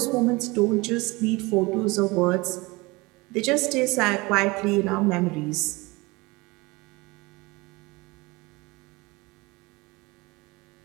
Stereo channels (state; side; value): quieter; left; 23.8 dB